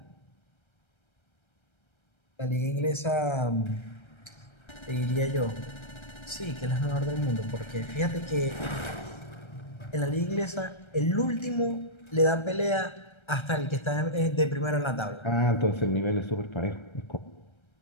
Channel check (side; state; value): right; late; 1.3 ms